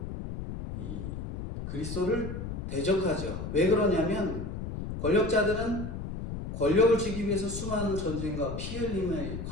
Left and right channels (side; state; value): left; noise; rumble, 6 dB below the sound